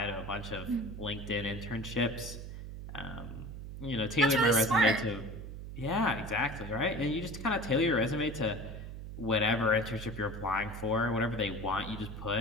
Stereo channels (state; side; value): noise; right; hum, 9 dB below the sound